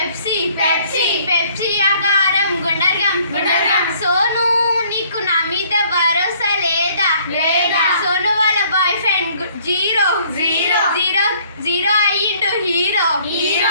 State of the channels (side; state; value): both; inverted; correlation -0.60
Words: Pepsi Pepsi Pepsi ఆకారం గుండర్గం గుండర్గం సోను నీకు నా మీద భరోసా లేదా లేదా సోను వాళ్ళ boy friend zero zero zero zero అయ్యిండు హీరో